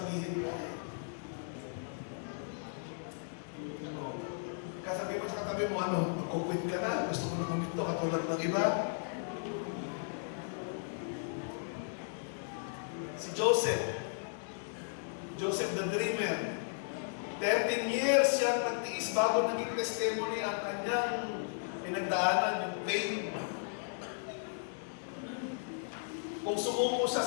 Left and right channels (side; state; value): right; silent; digital silence